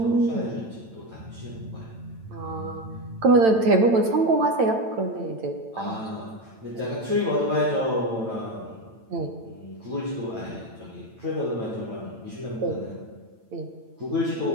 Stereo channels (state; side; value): late; left; 8.9 ms